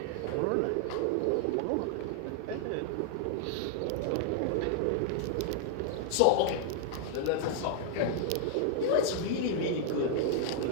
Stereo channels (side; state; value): both; different; correlation -0.01